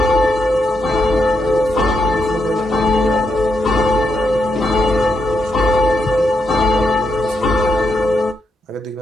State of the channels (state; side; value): normal; both; correlation 0.81